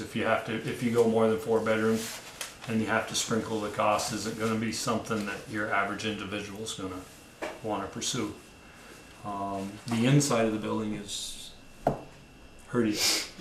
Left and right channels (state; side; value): identical; both; correlation 1.00